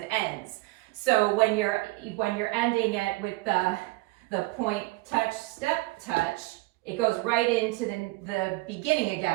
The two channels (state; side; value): quieter; left; 21.8 dB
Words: ends. So when you're ending it with the point, touch, step, touch, it goes right into the beginning